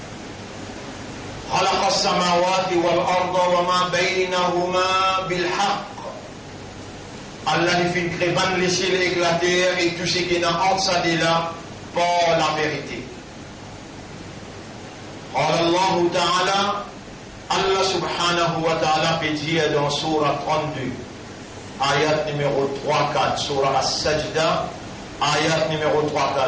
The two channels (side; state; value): both; identical; correlation 1.00